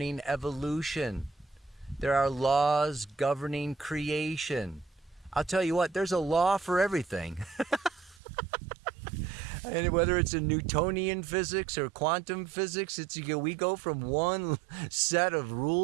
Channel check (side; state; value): left; drops out; at 8.2 s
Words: evolution. There are laws governing creation. I'll tell you what, there's a law for everything. And whether it's in Newtonian physics or quantum physics, we go from one set of